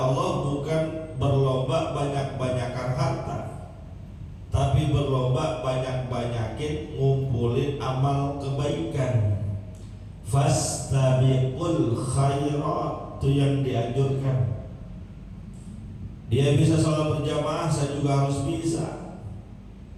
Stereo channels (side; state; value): both; identical; correlation 1.00